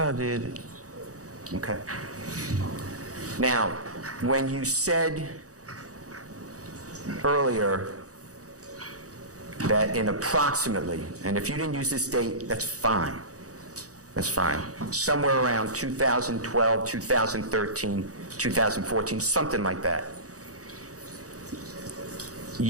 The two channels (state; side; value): late; left; 0.66 ms